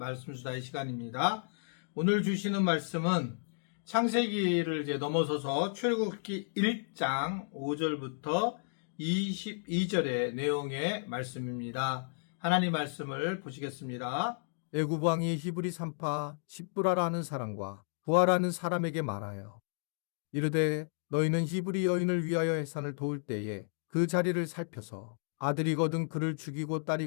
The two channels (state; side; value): silent; right; digital silence